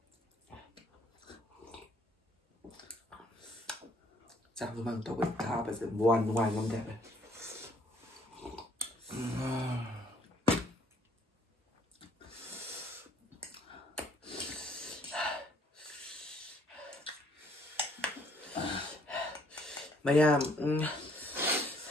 Sao bên bằng tàu bệnh ta bây giờ buồn ngoài nông đẹp này Maya,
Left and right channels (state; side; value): normal; both; correlation 0.63